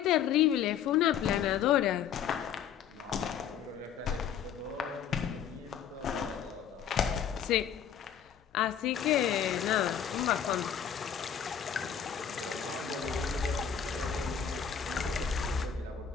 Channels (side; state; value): right; quieter; 8.4 dB